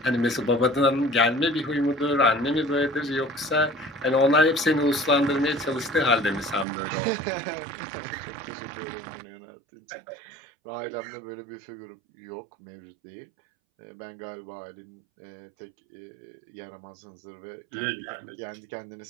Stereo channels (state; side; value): drops out; left; at 6.7 s